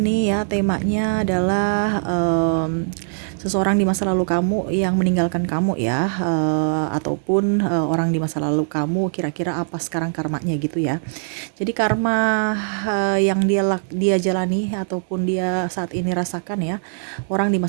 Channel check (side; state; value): left; silent; digital silence